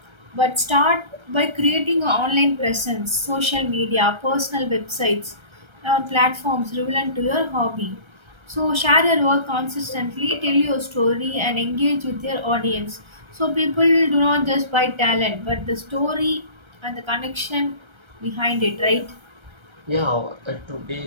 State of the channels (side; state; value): left; late; 1.3 ms